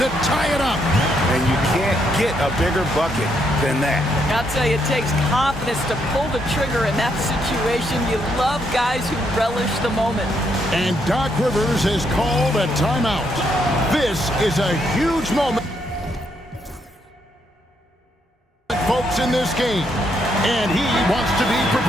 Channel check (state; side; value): normal; both; correlation 0.75